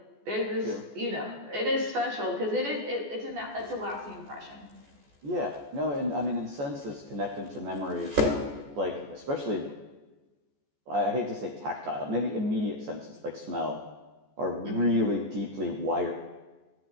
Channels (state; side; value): late; left; 14 ms